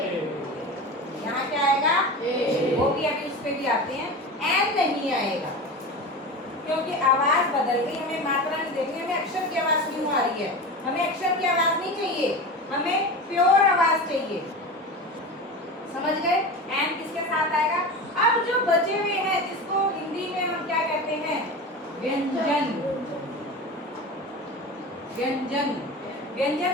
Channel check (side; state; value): both; normal; correlation 0.28